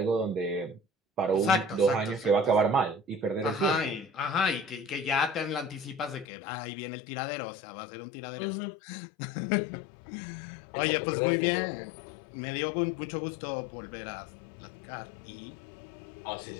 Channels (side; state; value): right; drops out; at 6.2 s